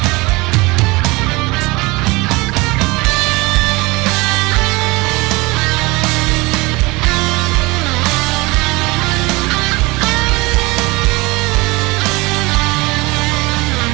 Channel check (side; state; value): left; quieter; 23.5 dB